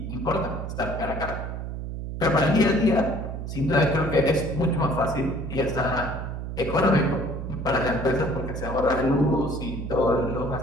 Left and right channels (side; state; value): right; noise; hum, 6 dB below the sound